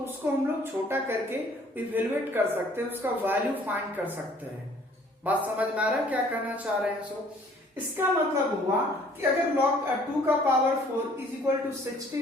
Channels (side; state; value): both; normal; correlation 0.57